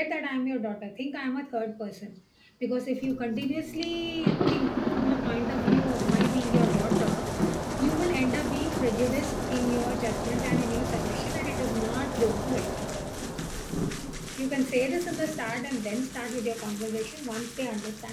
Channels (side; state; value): both; identical; correlation 1.00